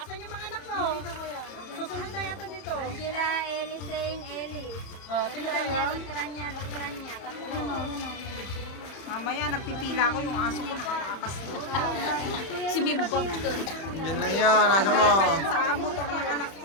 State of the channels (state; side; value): late; right; 31 ms